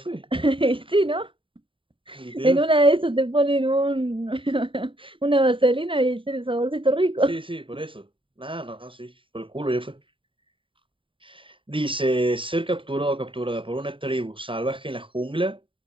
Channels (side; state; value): left; late; 0.25 ms